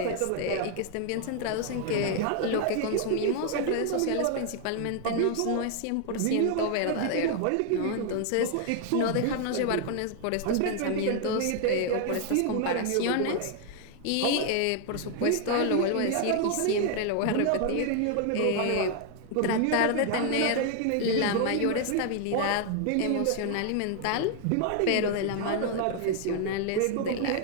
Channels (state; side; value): different; both; correlation 0.00